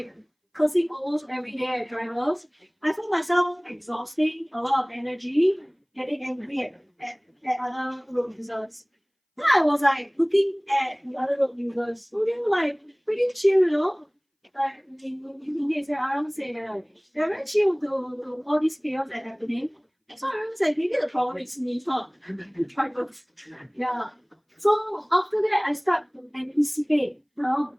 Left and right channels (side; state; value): both; identical; correlation 1.00